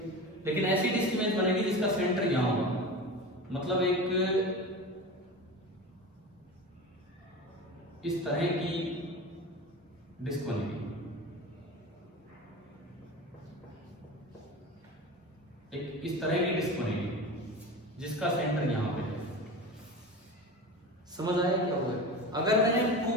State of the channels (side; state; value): both; normal; correlation 0.30